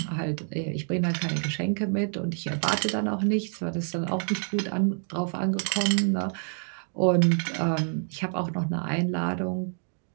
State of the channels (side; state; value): left; silent; 60 dB below the other